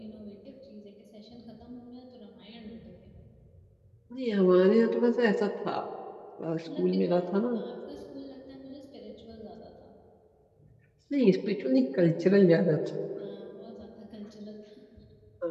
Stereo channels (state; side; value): identical; both; correlation 1.00